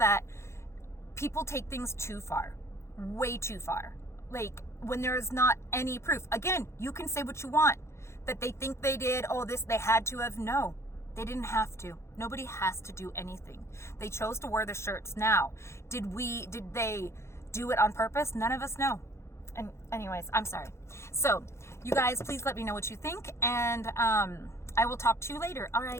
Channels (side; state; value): right; late; 0.13 ms